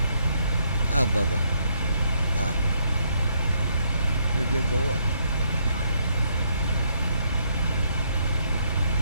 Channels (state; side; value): inverted; both; correlation -0.72